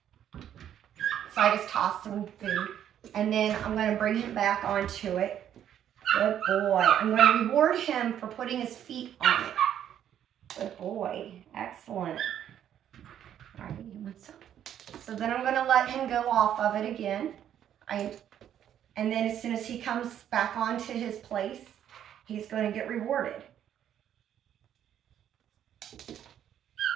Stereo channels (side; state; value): left; quieter; 10.2 dB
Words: so I just tossed him food, and then I'm going to bring him back onto it. Good boy. I'm going to reward him for putting his feet on it. Good boy. Excellent. All right, you want some? So then I'm going to let him go off of it again. And then as soon as he comes back onto his place, he's going to get rewarded.